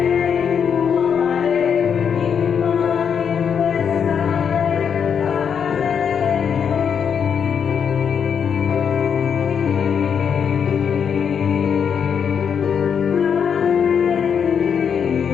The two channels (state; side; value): quieter; right; 7.3 dB